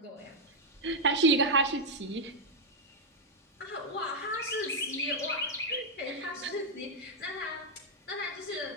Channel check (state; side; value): normal; both; correlation -0.02